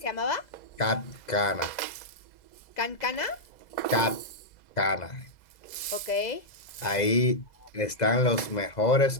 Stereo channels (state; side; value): late; right; 2.0 ms